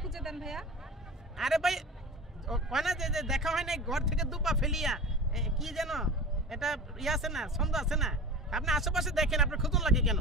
খুঁজে দেন ভাইয়া। আরে ভাই কয় না যে দেখা হয় নাই ঘর থেকে দুপা ফেলিয়া, কি যেন এটা ইয়ে আছে না, ছন্দ আছে না? আপনি আশেপাশে দেখেন, আপনার খুঁজুন লাগে কেন?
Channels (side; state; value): both; normal; correlation 0.34